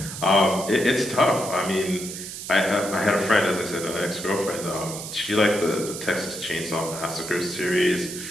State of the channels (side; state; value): right; noise; hiss, 9 dB below the sound